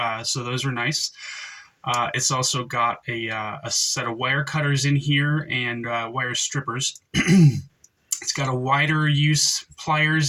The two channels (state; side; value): identical; both; correlation 1.00